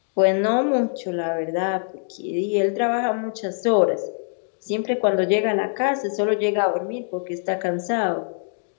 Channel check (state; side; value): silent; right; digital silence